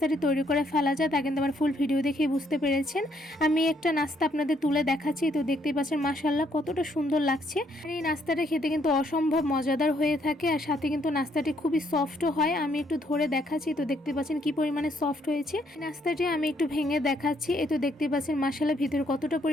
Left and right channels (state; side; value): normal; both; correlation 0.70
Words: তৈরি করে ফেলা যায় তা কিন্তু আমার ফুল ভিডিও দেখেই বুঝতে পেরেছেন। আমি একটা নাস্তা আপনাদের তুলে দেখাচ্ছি, তো দেখতেই পাচ্ছেন মাশাআল্লাহ কতটা সুন্দর লাগছে। আর এই নাস্তাটা খেতে কিন্তু অসম্ভব মজাদার হয়ে থাকে, আর সাথে কিন্তু নাস্তাটি খুবই সফটও হয়। আমি একটু ধরে দেখাচ্ছি, তো দেখতে পাচ্ছেন কি পরিমাণে সফট হয়েছে। নাস্তাটি আমি একটু ভেঙে দেখাচ্ছি, এই তো দেখতে পাচ্ছেন মাশাআল্লাহ ভিতরে কতটা